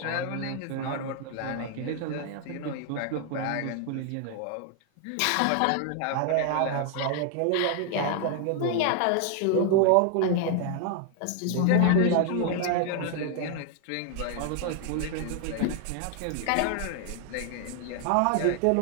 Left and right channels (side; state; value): both; different; correlation 0.00